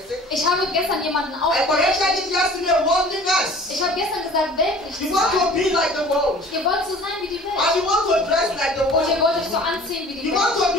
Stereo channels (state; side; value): normal; both; correlation 0.47